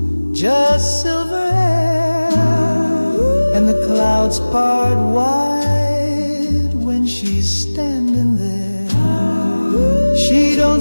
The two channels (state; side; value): inverted; both; correlation -1.00